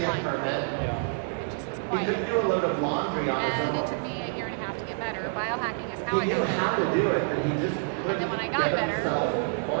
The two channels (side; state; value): left; silent; digital silence